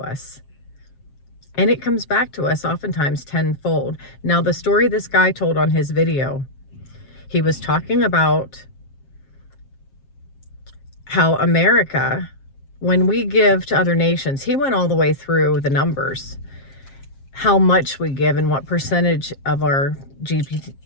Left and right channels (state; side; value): late; right; 7.5 ms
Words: And it comes back to us oftentimes tenfold. Now, the story this guy told on his video, he was talking about how America, when we give to other nations, he went all the way through the numbers, how much we give and what percentage of our